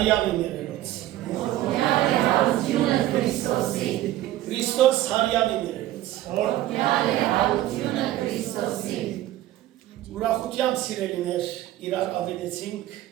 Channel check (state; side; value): quieter; left; 14.5 dB